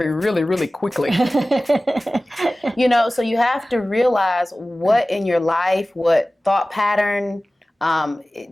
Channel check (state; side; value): normal; both; correlation 0.97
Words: really, really quickly. So you have to realize what in your life, what thought pattern,